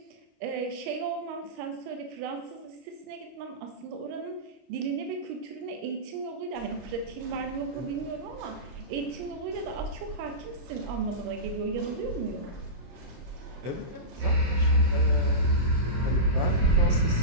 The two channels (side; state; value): left; late; 25 ms